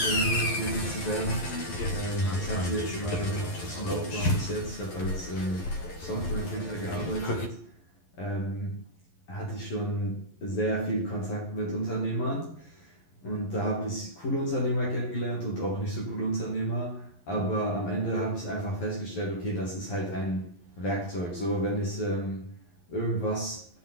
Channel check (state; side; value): late; right; 11 ms